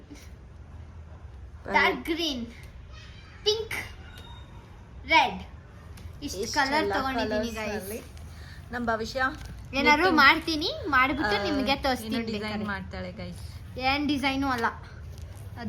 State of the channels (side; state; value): both; identical; correlation 1.00